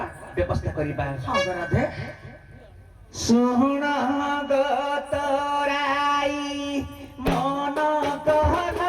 ବ୍ୟବସ୍ଥା କରିବା ହଁ ରାଧେ ଶୁଣଙ୍ଗ ତୋରାଇ ମନ କହନ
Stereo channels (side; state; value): both; identical; correlation 1.00